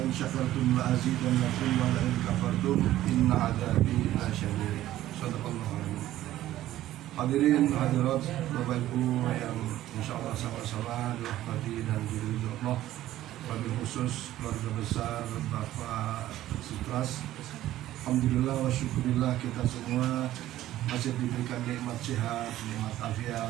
in syakartum la azidannakum wa la in kafartum inna 'adzabi lasyadid. Shadaqallahu alazim. Hadirin hadirat Bapak Ibu yang insyaallah sama-sama dirahmati dan diridhoi Allah. Wabil khusus keluarga besar Bapak Sutras, alhamdulillah wa syukurillah kita semua masih diberikan nikmat sehat, nikmat afiat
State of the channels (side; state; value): left; quieter; 14.1 dB